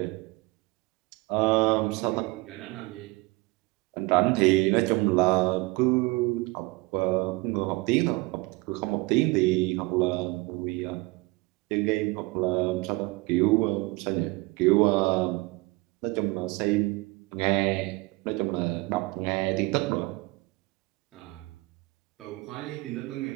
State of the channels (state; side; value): quieter; left; 23.6 dB